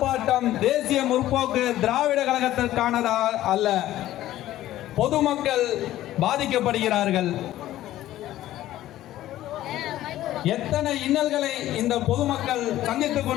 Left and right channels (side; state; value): right; quieter; 14.1 dB